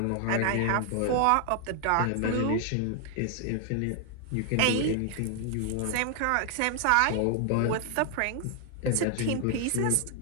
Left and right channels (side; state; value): both; different; correlation 0.00